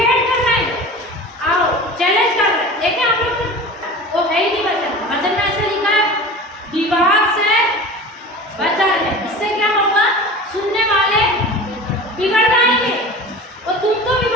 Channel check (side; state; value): both; normal; correlation 0.35